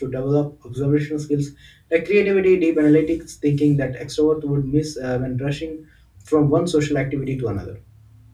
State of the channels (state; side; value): identical; both; correlation 1.00